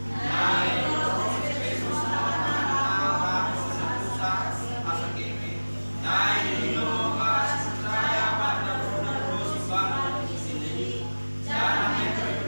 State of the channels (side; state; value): both; inverted; correlation -1.00